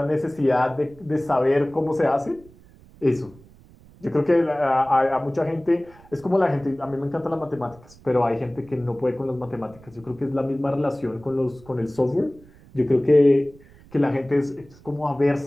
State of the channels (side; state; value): right; noise; rumble, 24 dB below the sound